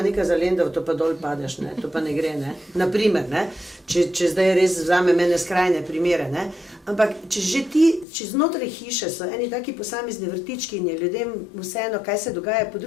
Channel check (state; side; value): drops out; right; at 8.1 s